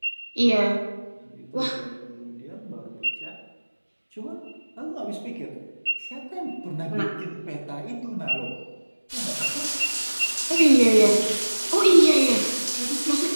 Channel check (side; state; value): both; inverted; correlation -1.00